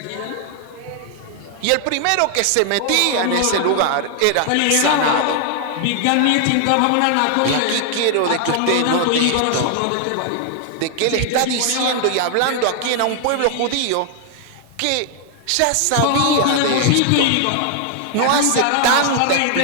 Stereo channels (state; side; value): different; both; correlation 0.00